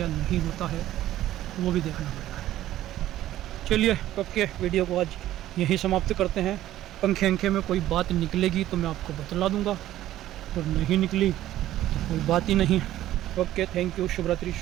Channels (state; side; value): quieter; left; 13.7 dB